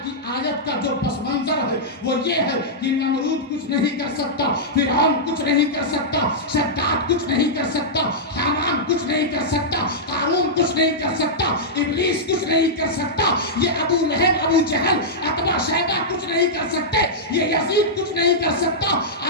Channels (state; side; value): normal; both; correlation -0.10